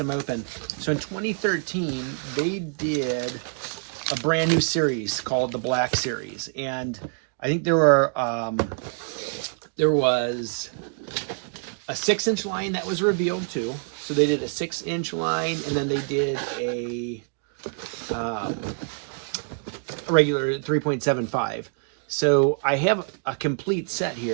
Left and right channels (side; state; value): left; silent; 61 dB below the other